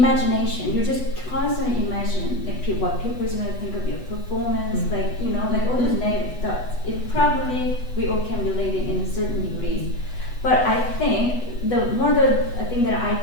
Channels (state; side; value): late; right; 8.1 ms